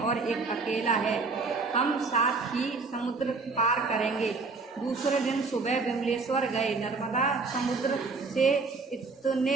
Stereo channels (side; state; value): left; quieter; 4.1 dB